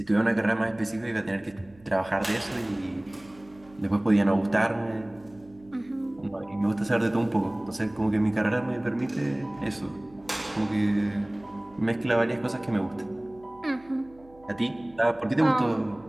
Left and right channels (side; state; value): right; noise; hum, 26 dB below the sound